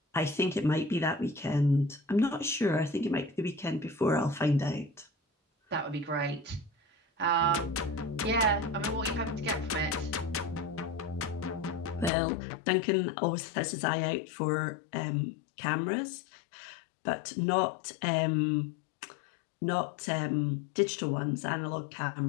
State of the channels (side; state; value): right; drops out; at 12.1 s